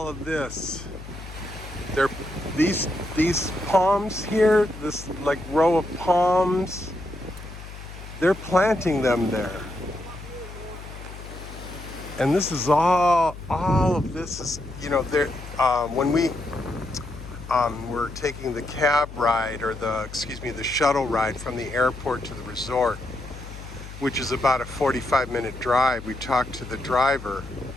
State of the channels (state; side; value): noise; left; hum, 13 dB below the sound